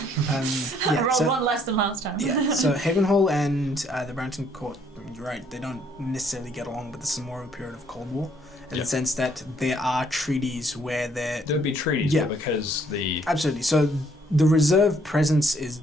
I rolled one less than last time. Yeah, so Havenhall and the Branton Court, you're right, they don't necessarily get along, but this is more of a period of Cold War, in the sense that there are treaties where there would be treaties, Yeah. but because the... Absolutely. So the reserve presence is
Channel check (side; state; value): both; normal; correlation 0.65